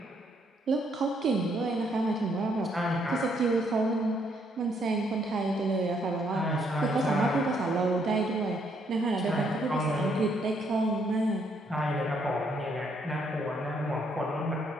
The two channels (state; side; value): normal; both; correlation 0.71